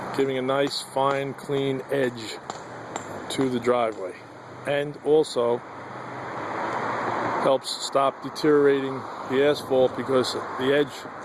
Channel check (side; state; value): both; identical; correlation 1.00